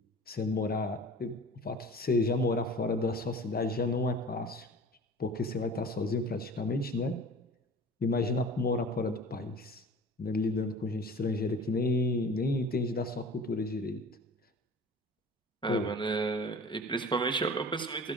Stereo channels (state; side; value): normal; both; correlation 0.41